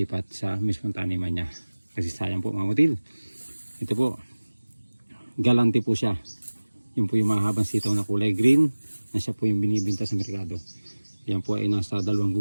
sa mismong taniman niya. Kasi sayang po mga butil. Ito po, galante po siya. Yun po yung mahabang sitaw na kulay green na siya po yung binibinta sa merkado. Yan po ay nasa 2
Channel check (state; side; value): inverted; both; correlation -1.00